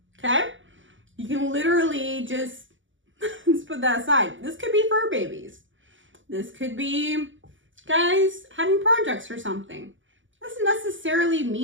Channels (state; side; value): late; left; 0.56 ms